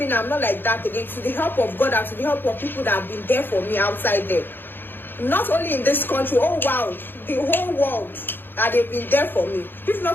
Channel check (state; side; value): late; right; 0.098 ms